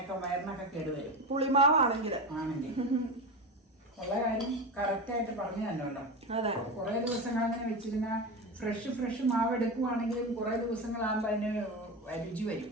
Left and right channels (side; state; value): both; normal; correlation 0.21